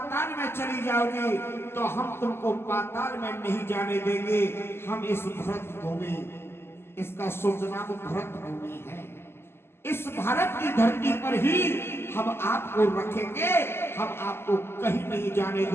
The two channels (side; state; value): right; late; 0.12 ms